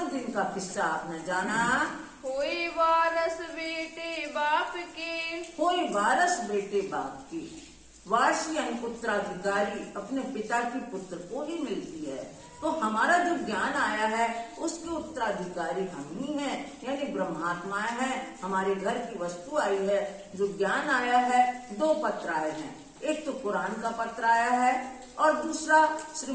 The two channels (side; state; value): both; identical; correlation 1.00